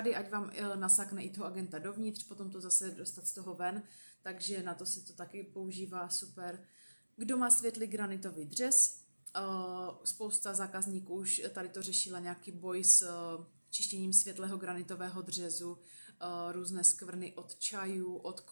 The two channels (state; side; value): inverted; both; correlation -1.00